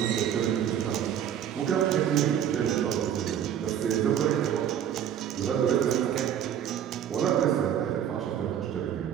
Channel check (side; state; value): left; quieter; 9.6 dB